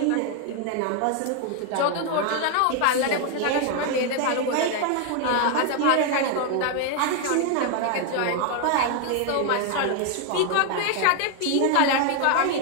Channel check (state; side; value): different; both; correlation 0.00